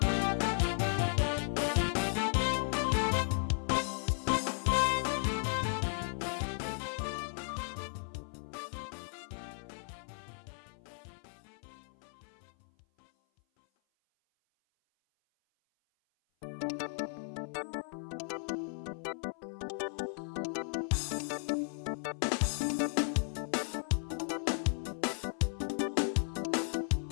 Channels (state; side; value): silent; right; 54 dB below the other